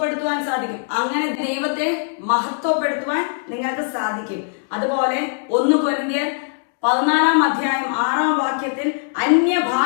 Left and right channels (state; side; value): silent; right; 65 dB below the other